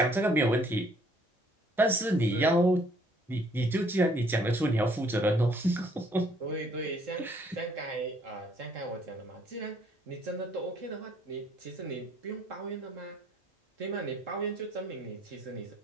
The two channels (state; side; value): normal; both; correlation 0.63